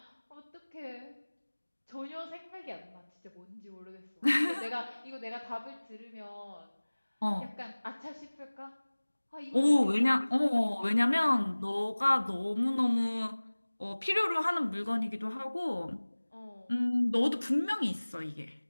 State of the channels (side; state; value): both; inverted; correlation -1.00